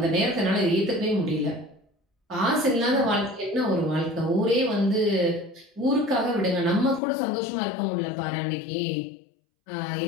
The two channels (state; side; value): drops out; right; at 7.0 s